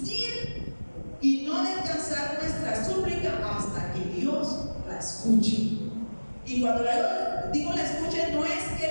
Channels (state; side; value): inverted; both; correlation -1.00